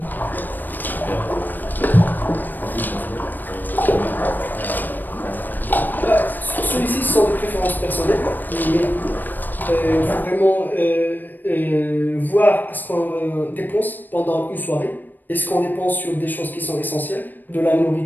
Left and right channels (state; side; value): late; right; 0.090 ms